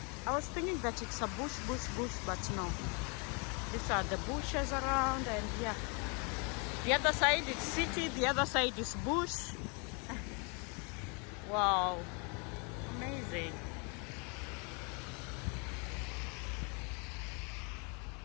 was thinking that it's a bush, but no. These are the bushes around, and yeah. The other side is city, the other side is bush. Wow. Amazing.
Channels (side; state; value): right; quieter; 34.2 dB